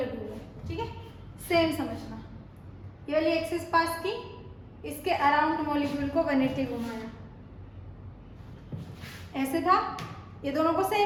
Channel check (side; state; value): both; identical; correlation 1.00